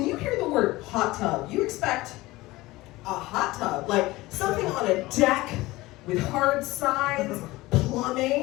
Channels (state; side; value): quieter; right; 19.5 dB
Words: you hear the word hot tub, you expect a hot tub, like something on a deck with hard sides,